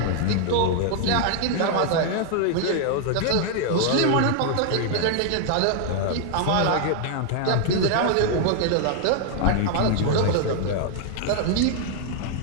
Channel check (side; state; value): both; different; correlation 0.00